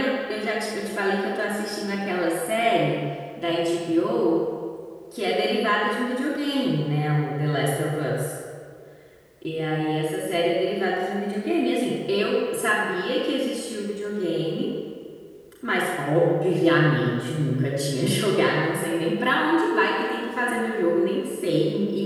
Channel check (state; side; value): identical; both; correlation 1.00